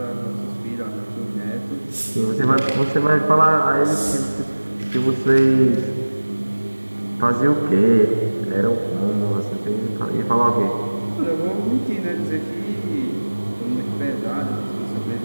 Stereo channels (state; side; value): inverted; both; correlation -1.00